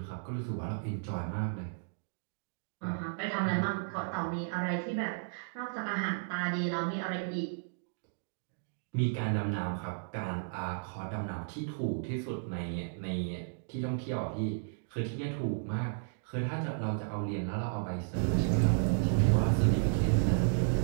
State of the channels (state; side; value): silent; left; digital silence